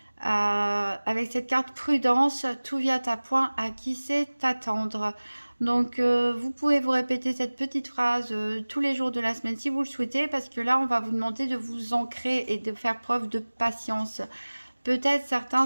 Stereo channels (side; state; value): both; inverted; correlation -1.00